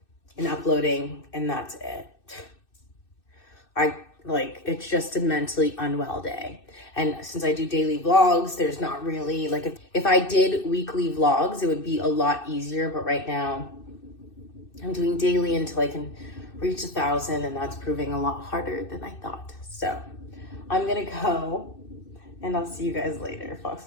and uploading, and that's it. like, it's just a mentally unwell day. And since I do daily vlogs, there's not really, like, if I did weekly vlogs, it would be a lot easier. But right now, I'm doing daily until I can reach 1,000, and that's proving a lot harder than I thought. So I'm gonna go, and I'll see you guys later. Fox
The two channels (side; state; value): right; late; 2.6 ms